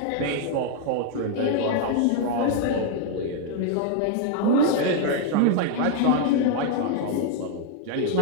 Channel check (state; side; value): different; both; correlation 0.00